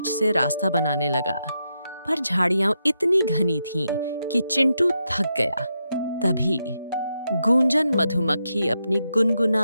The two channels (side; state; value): both; inverted; correlation -0.84